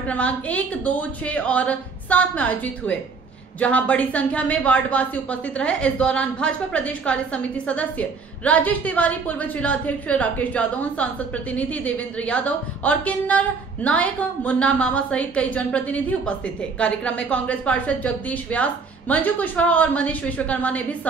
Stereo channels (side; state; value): left; quieter; 4.8 dB